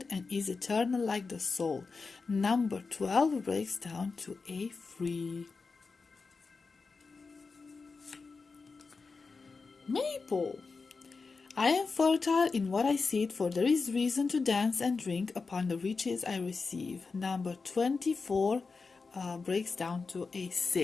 and is eternal like the soul. Number 12 breaks down to a 3. Maple. I am fertile in what I seed, for there is reason to dance and drink upon the riches I receive. Number 24 breaks down to a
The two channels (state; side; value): quieter; right; 4.4 dB